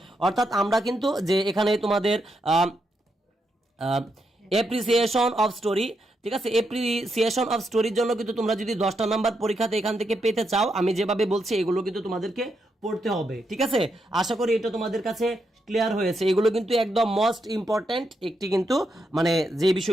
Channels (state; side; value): normal; both; correlation 0.82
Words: অর্থাৎ আমরা কিন্তু যে এখানে তোমাদের অ্যাপ্রিসিয়েশন অফ স্টোরি, ঠিক আছে, অ্যাপ্রিসিয়েশন অফ স্টোরির জন্য কিন্তু তোমরা যদি 10টা নাম্বার পরীক্ষাতে এখান থেকে পেতে চাও, আমি যেভাবে বলছি এগুলো কিন্তু তোমাদেরকে পড়তে হবে, ঠিক আছে। আশা করি এটা তোমাদের কাছে ক্লিয়ার হয়েছে। এগুলো কিন্তু একদম মোস্ট ইম্পর্টেন্ট একটি কিন্তু মানে যে